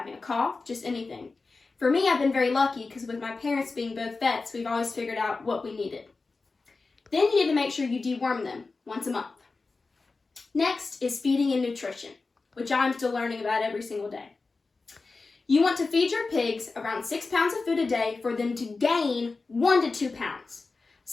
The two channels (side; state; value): right; quieter; 3.9 dB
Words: a cough, just anything. For me, I've been very lucky because with my parents being both vets, we've always figured out what we needed. Then you need to make sure you deworm them once a month. Next is feeding and nutrition, which I'm still learning about every single day. You want to feed your pigs around 6 pounds of food a day for them to gain 1 to 2 pounds.